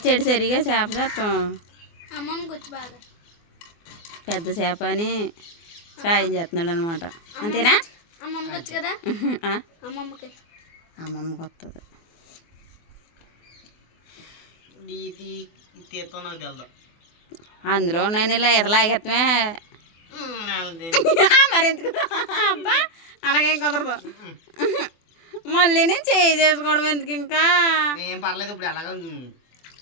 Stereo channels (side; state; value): right; late; 24 ms